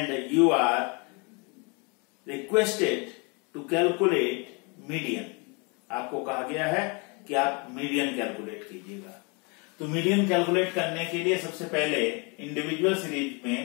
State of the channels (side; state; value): right; quieter; 31.7 dB